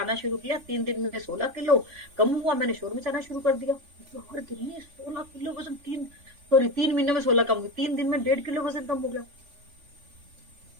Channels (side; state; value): left; late; 3.4 ms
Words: शुरू किया। 3 दिन में 16 किलो कम हुआ, मैंने शोर मचाना शुरू कर दिया। हर दिन में 16 किलो वजन, 3 महीने में 16 कम हुई, 3 दिन में 1.5 किलो वजन कम हो गया।